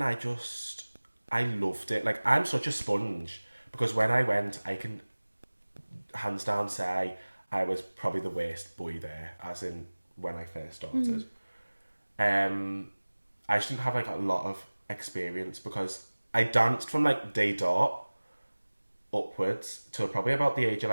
I loved it. Like, I'm such a sponge, because when I went, I can hands down say I was probably the worst boy there, as in when I first started. I just didn't have like a lot of experience, because I danced from like day dot upwards to probably about the age of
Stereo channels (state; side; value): inverted; both; correlation -1.00